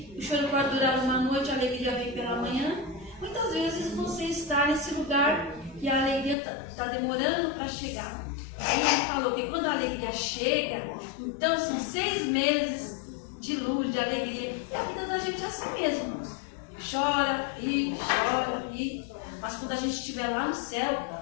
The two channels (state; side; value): drops out; right; at 6.4 s